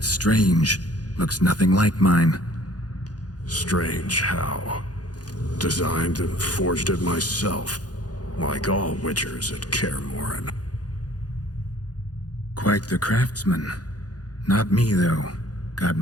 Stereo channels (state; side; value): late; right; 0.68 ms